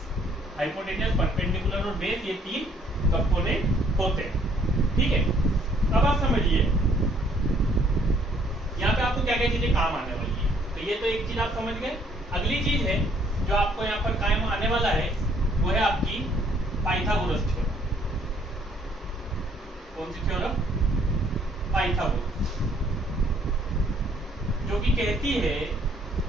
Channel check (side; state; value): both; normal; correlation 0.64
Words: हाइपोटेनियस, परपेंडिकुलर और बेस, ये तीन कंपोनेंट होते हैं। ठीक है, अब आप समझिए यहाँ पे आपको क्या क्या चीजें काम आने वाली है। तो ये तो एक चीज आप समझ गए। अगली चीज है जो आपको यहाँ पर काम आने वाला है वो है आपकी पाइथागोरस थ्योरम। कौन सी थ्योरम? पाइथागोरस, जो कि कहती है